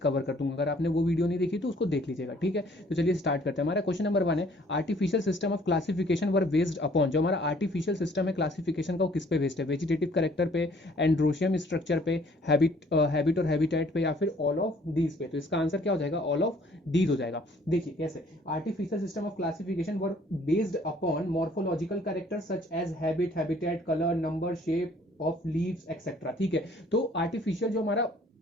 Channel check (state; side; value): normal; both; correlation 0.58